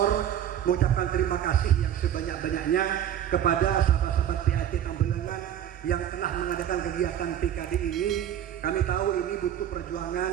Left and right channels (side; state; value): left; quieter; 10.5 dB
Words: mengucapkan terima kasih yang sebanyak-banyaknya kepada sahabat-sahabat PAT Tambelangan yang telah mengadakan kegiatan PKD ini. Kami tahu ini butuh